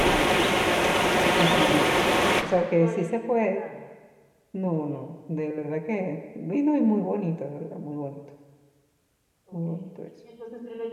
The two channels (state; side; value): identical; both; correlation 1.00